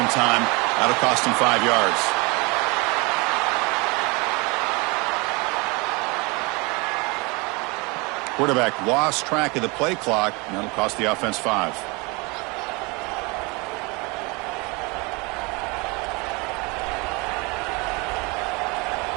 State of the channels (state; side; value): quieter; left; 27.4 dB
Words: time. That'll cost him 5 yards. Quarterback lost track of the play clock. That'll cost the offense 5.